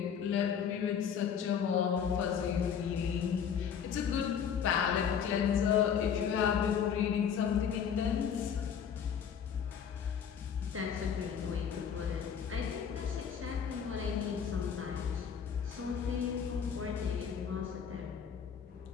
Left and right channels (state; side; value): quieter; right; 7.6 dB